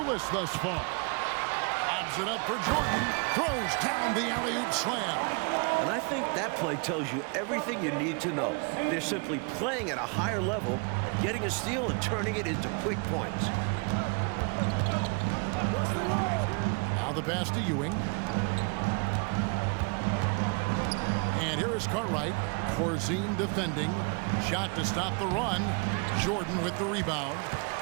thus far. Lobs it up for Jordan. Throws down the alley-oop slam. And I think that play tells you everything you need to know. They're simply playing at a higher level, getting a steal and turning it into quick points. Now the pass to Ewing. And here is Cartwright. Corzine defending. Shot to stop the run. Jordan with the rebound.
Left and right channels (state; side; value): quieter; left; 33.5 dB